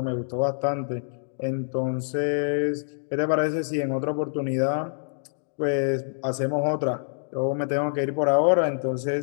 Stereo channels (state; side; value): silent; right; digital silence